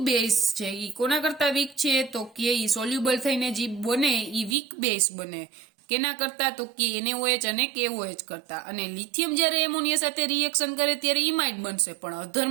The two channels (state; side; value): drops out; left; at 4.5 s